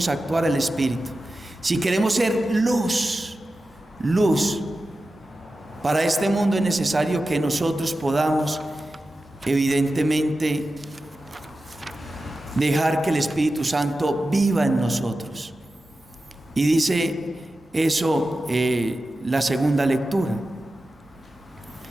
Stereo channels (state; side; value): normal; both; correlation 0.93